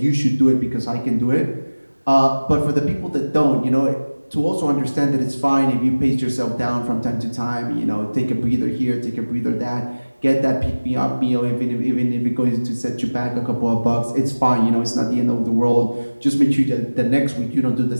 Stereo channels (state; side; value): inverted; both; correlation -1.00